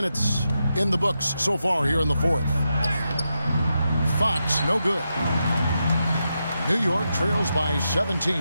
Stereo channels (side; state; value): both; inverted; correlation -0.87